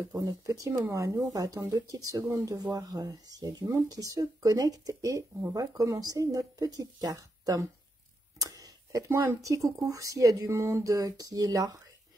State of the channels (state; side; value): normal; both; correlation 0.84